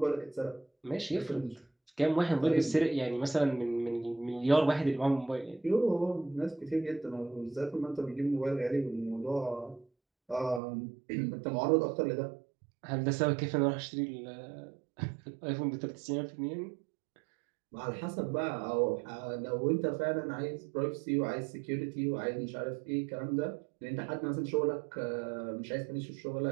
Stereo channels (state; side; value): drops out; left; at 10.6 s